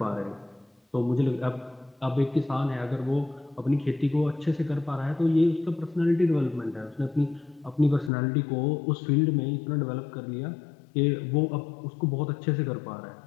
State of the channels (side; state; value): right; drops out; at 8.1 s